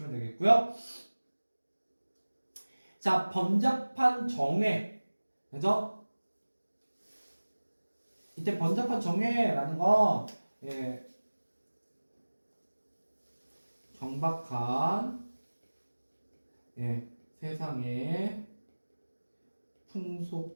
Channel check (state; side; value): inverted; both; correlation -1.00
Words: 되겠고요. 자, 번잡한 정회, 그죠? 이때 번잡한 정회라는 건 경박한 세상의 풍속으로